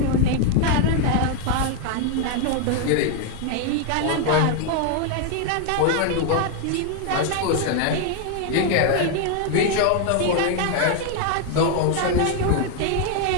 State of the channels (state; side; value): different; both; correlation 0.00